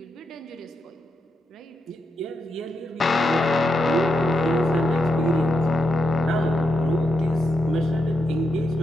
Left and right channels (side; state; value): both; normal; correlation 0.84